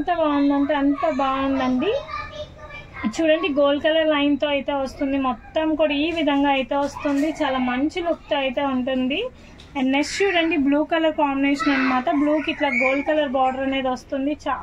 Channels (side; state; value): both; identical; correlation 1.00